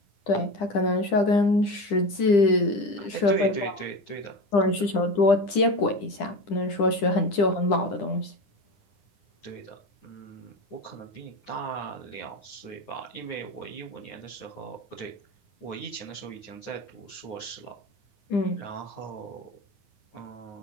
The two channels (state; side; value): late; right; 9.9 ms